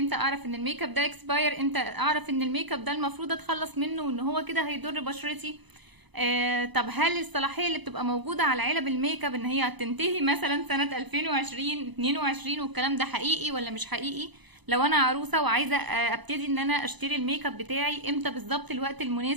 اعرف ان الميك اب ده اكسباير؟ امتى اعرف ان الميك اب ده المفروض اتخلص منه وان هو كده هيضر بشرتي؟ طب هل الصلاحيه اللي بتبقى موجوده على علب الميك اب ان هي هتنتهي مثلا سنه 2020 22 والكلام ده حقيقي ولا مش حقيقي؟ لو انا عروسه وعايزه ابتدي ان انا اشتري الميك اب بتاعي، امتى بالظبط الوقت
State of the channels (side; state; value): left; late; 1.0 ms